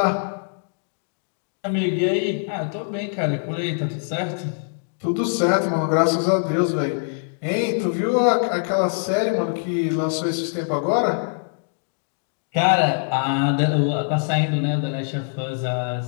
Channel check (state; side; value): silent; right; digital silence